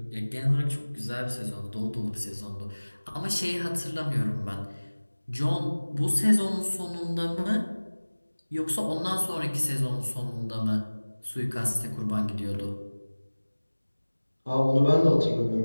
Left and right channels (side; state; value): both; inverted; correlation -1.00